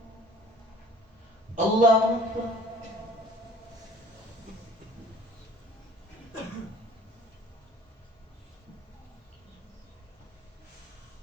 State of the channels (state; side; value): normal; both; correlation 0.49